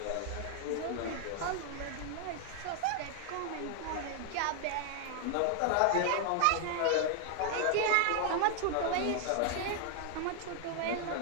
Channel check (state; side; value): different; both; correlation 0.00